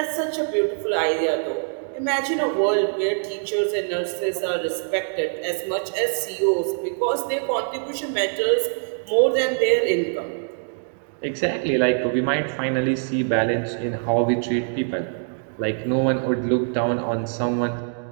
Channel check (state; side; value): silent; left; digital silence